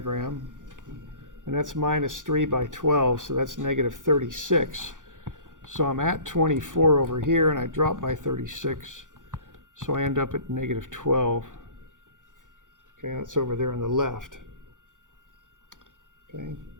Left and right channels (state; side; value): late; left; 0.88 ms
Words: and that's minus 3 by 12, so that's negative 36. So I'm at 24 over here, and I drop by 36, so I end up at negative 12. Okay, that's over there on the left. Okay.